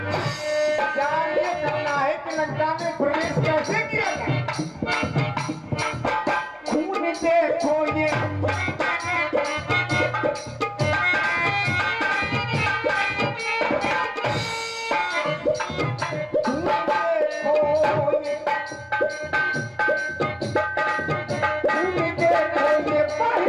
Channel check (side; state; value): both; identical; correlation 1.00